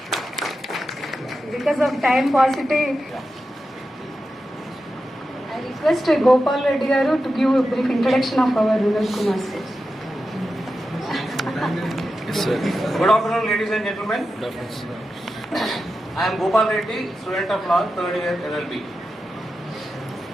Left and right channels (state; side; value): normal; both; correlation 0.90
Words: Because of time paucity, I request Gopal Reddy Garu to give a brief introduction of our Vinod Kumar sir. Yes, sir. Good afternoon, ladies and gentlemen. Good afternoon, sir. I am Gopal Reddy, student of law, third year LLB.